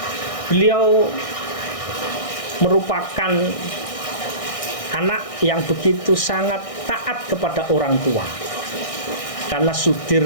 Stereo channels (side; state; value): right; late; 1.6 ms